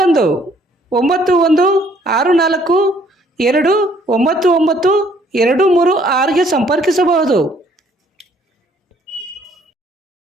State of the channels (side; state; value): both; normal; correlation 0.63